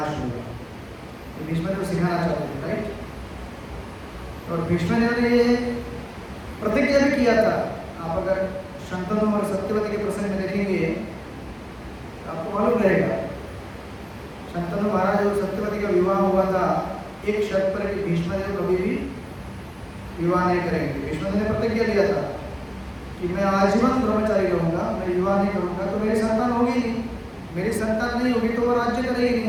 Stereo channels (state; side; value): identical; both; correlation 1.00